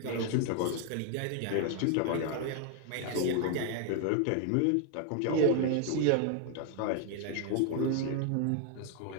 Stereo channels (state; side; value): different; both; correlation 0.00